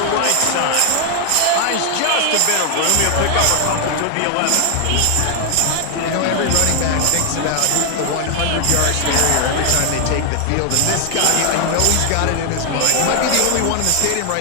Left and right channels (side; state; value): both; different; correlation 0.00